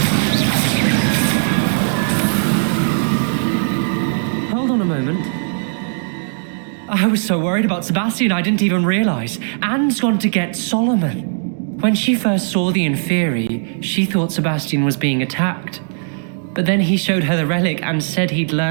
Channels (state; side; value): silent; left; digital silence